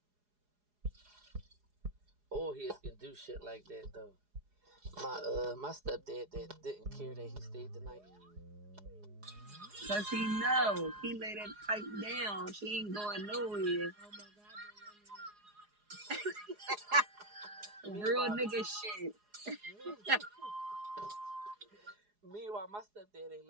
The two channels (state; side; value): late; left; 4.8 ms